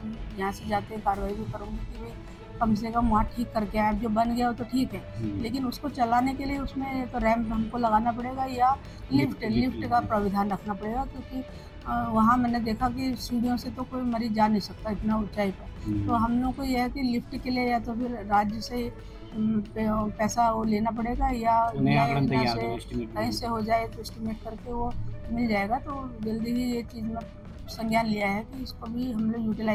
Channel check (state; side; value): identical; both; correlation 1.00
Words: यहाँ से जाते कार्रवाई भी करूँगी कि भाई कम से कम वहाँ ठीक करके आए। जो बन गया हो तो ठीक है, लेकिन उसको चलाने के लिए उसमें तो रैंप हमको लगाना पड़ेगा, या लिफ्ट का प्राविधान रखना पड़ेगा, क्योंकि वहाँ मैंने देखा कि सीढ़ियों से तो कोई मरीज जा नहीं सकता इतना ऊंचाई पर। तो हम लोग को यह है कि लिफ्ट के लिए या तो फिर राज्य से पैसा वो लेना पड़ेगा, या कहीं से हो जाए तो एस्टिमेट करके वो मिल जाएगा। तो जल्दी ही ये चीज़ में संज्ञान लिया है कि इसको भी हम लोग